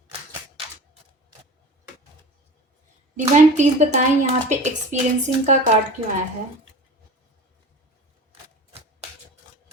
डिवाइन प्लीज बताएं यहाँ पे एक्सपीरियंसिंग का कार्ड क्यों आया है।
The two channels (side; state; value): both; normal; correlation 0.36